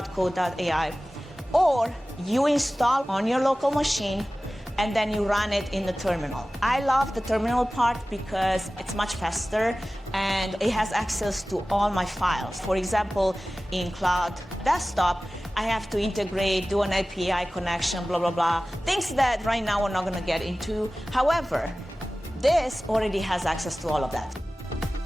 Or you install on your local machine and then you run it in the terminal. I love the terminal part because it's much faster and it has access to all my files. For example, in Cloud Desktop, I have to integrate, do an API connection, blah, blah, blah. Things that right now we're not gonna get into. However, this already has access to all of that.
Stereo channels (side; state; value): both; normal; correlation 0.97